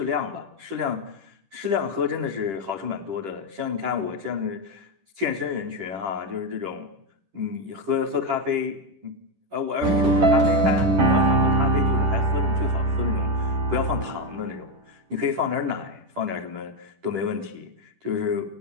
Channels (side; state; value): left; late; 10 ms